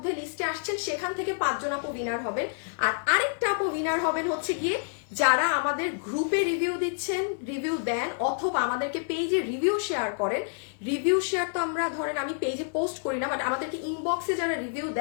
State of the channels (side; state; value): right; silent; 59 dB below the other